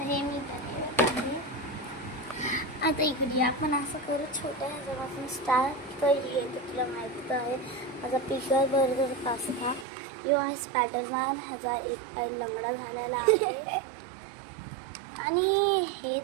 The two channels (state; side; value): drops out; left; at 9.9 s